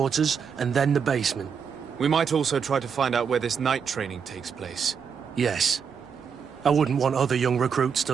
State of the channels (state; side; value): quieter; left; 6.7 dB